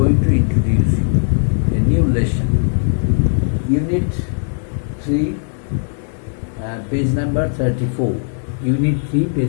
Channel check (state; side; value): silent; right; 59 dB below the other